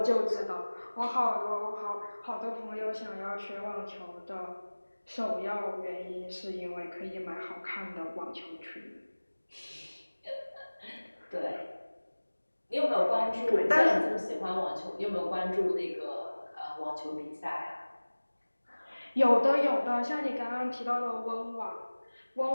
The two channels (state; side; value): inverted; both; correlation -1.00